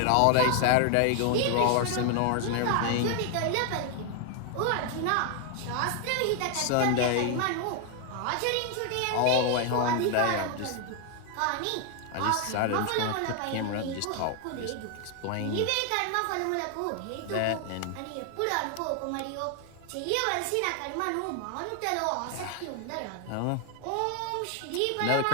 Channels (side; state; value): both; different; correlation 0.00